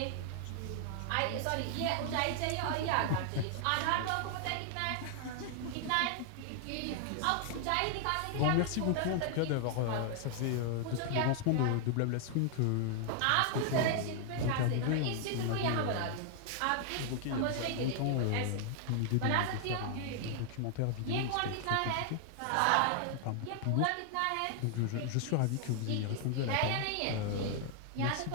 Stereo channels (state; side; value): different; both; correlation 0.00